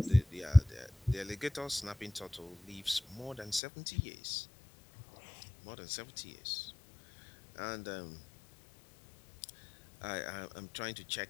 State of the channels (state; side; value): drops out; right; at 3.6 s